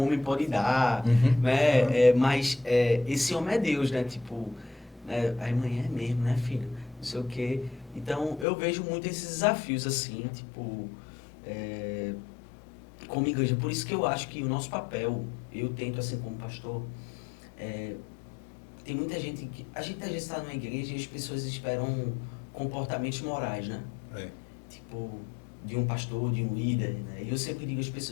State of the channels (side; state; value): right; drops out; at 8.5 s